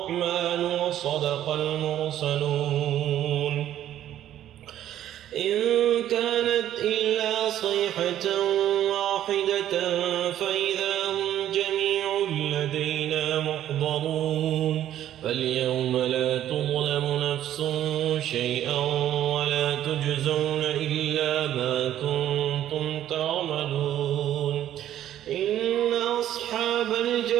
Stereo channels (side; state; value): left; quieter; 11.8 dB